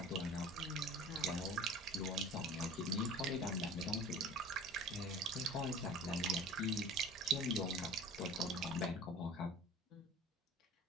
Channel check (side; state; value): both; normal; correlation 0.42